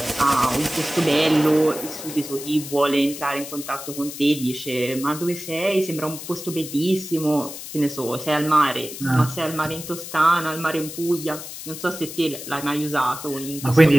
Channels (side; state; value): left; noise; hiss, 11 dB below the sound